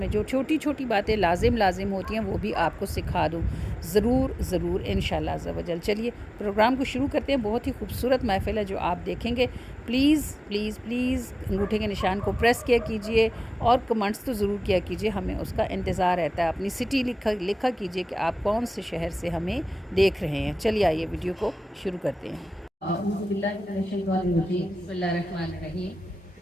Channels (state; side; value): normal; both; correlation 0.97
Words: جو چھوٹی چھوٹی باتیں لازم ہوتی ہیں وہ بھی آپ کو سکھا دوں، ضرور انشاءاللہ عز و جل۔ چلیے پروگرام کو شروع کرتے ہیں۔ بہت ہی خوبصورت محفل ہے جو آپ دیکھیں گے۔ پلیز انگوٹھے کے نشان کو پریس کیا کیجئے اور کمنٹس تو ضرور کیا کیجئے، ہمیں اس کا انتظار رہتا ہے۔ اپنی سٹی لکھا کیجئے کہ آپ کون سے شہر سے ہمیں دیکھ رہے ہیں۔ چلیے آئیے ویڈیو کو شروع کرتے ہیں۔ اعوذ باللہ من الشیطان الرجیم، بسم اللہ الرحمن الرحیم۔